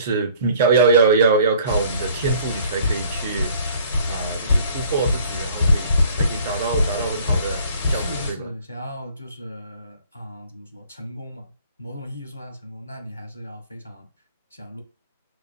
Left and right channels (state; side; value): inverted; both; correlation -0.55